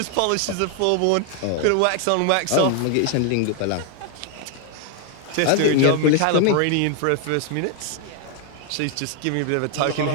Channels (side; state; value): both; different; correlation 0.00